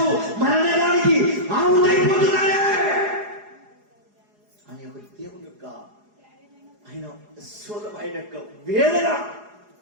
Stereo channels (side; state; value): left; late; 4.8 ms